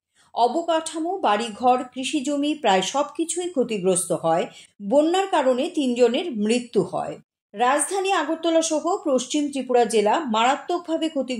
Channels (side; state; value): both; identical; correlation 1.00